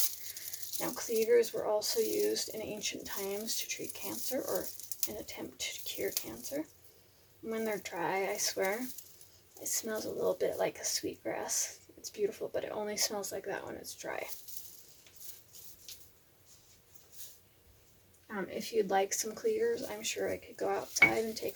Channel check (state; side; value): identical; both; correlation 1.00